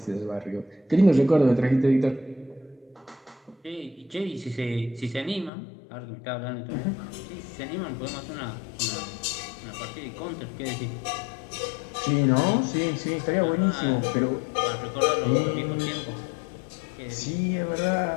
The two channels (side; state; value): right; drops out; at 5.5 s